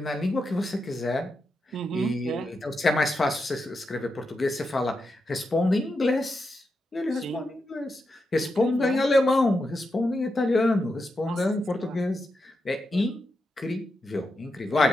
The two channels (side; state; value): both; normal; correlation 0.87